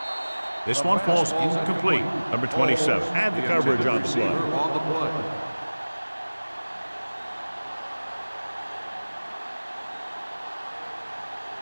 this one falls incomplete. Number 27. Add the coverage on the play.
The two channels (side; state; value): both; inverted; correlation -1.00